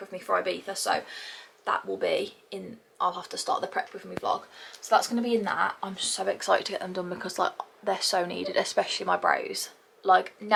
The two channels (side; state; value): both; identical; correlation 1.00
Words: me for Ibiza, so that will be in, I'll have to start the prep with me vlog. So that's going to be in that. I'm so excited to get them done because like they're so needed, especially my brows. Like